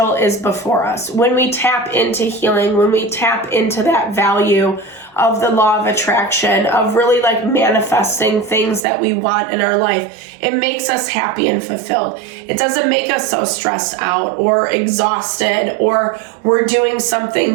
is before us. When we tap into healing, when we tap into that value of the law of attraction, of really like manifesting things that we want in our life, it makes us happy and fulfilled. It doesn't make us so stressed out or exhausted, or we're doing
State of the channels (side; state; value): left; drops out; at 8.8 s